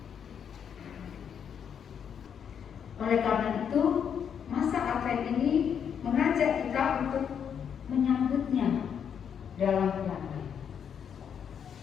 Oleh karena itu, masa Advent ini mengajak kita untuk menyambutnya dalam damai.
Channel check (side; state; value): right; quieter; 7.9 dB